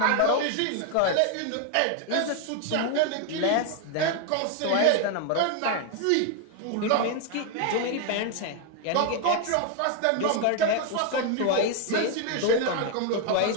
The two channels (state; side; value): different; both; correlation 0.00